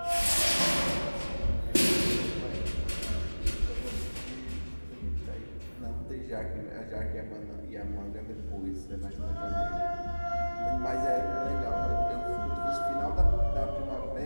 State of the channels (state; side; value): inverted; both; correlation -1.00